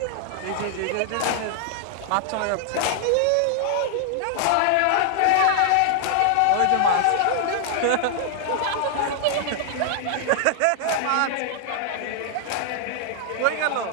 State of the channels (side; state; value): both; different; correlation 0.00